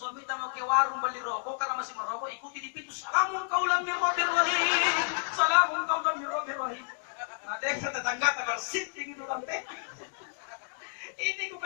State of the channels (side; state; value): right; silent; digital silence